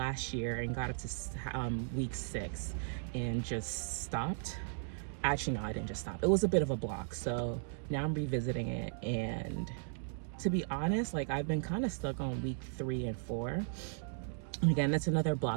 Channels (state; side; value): silent; left; digital silence